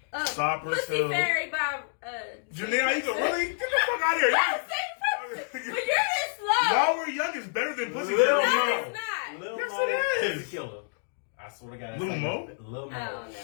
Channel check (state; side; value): silent; right; digital silence